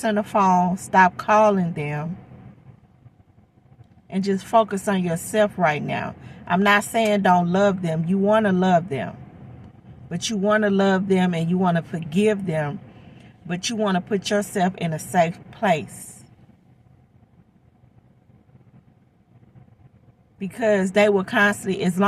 the phone. Stop calling them. And just focus on yourself right now. I'm not saying don't love them. You want to love them. But you want to love them and you want to forgive them. But you want to put yourself in a safe place. Because they will constantly, as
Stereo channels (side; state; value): both; identical; correlation 1.00